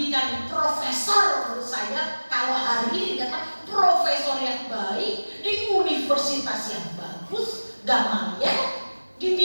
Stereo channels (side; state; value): both; inverted; correlation -1.00